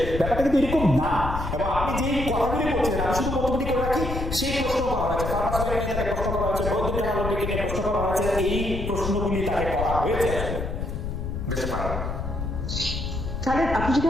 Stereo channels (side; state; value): left; noise; rumble, 4 dB below the sound